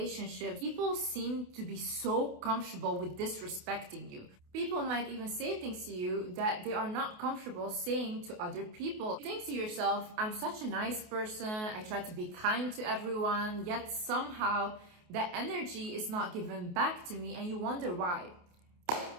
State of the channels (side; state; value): left; late; 28 ms